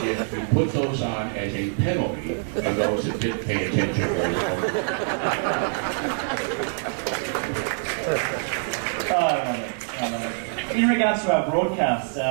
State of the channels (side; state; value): left; silent; 62 dB below the other